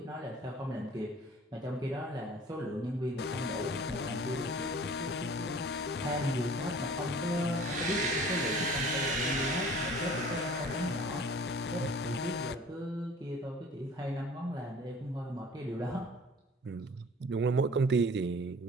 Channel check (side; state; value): both; normal; correlation 0.47